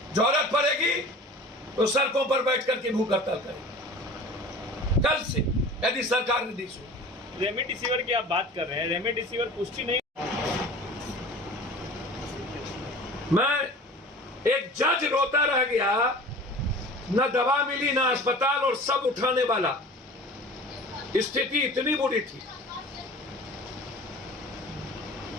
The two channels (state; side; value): normal; both; correlation 0.40